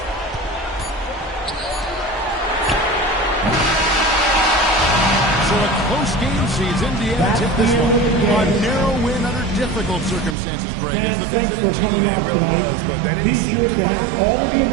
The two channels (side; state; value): left; drops out; at 10.4 s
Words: So a close game sees Indiana tip this one. A narrow win under difficult circumstances, Greg, as the visiting team. It really was, but that didn't seem to matter.